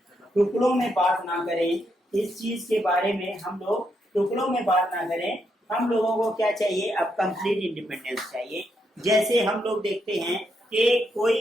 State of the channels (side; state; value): both; normal; correlation 0.79